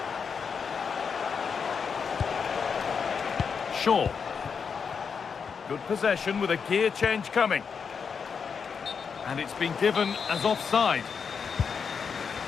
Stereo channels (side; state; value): right; quieter; 6.1 dB